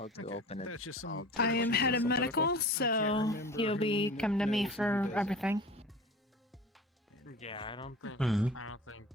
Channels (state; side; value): normal; both; correlation 0.38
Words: do open it. That's just I'll some. do I it. am head of Some medical, political? so remember you'll be who coming to me knows and who for doesn't. everything. Yeah, I don't think. Mhm. I don't think.